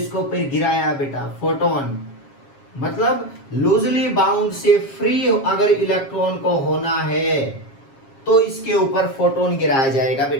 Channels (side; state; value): right; late; 7.4 ms